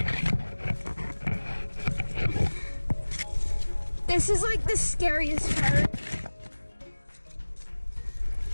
This is like the scariest part.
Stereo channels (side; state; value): both; inverted; correlation -1.00